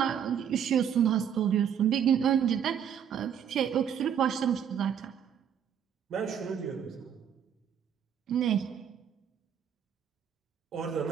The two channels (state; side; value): quieter; left; 8.5 dB